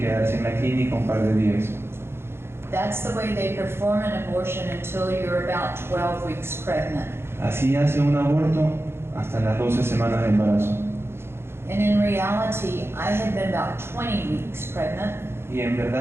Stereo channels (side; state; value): left; late; 0.12 ms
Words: en la clínica un par de días. That's the way they perform an abortion until you're about 12 weeks pregnant. Así hace un aborto hasta las 12 semanas de embarazo. And in reality, I had been about 20 weeks pregnant, Y en